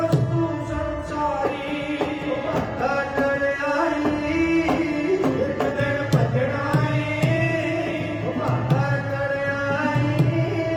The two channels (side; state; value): both; identical; correlation 1.00